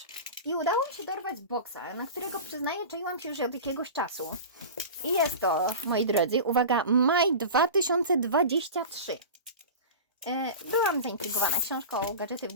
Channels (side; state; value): both; inverted; correlation -0.31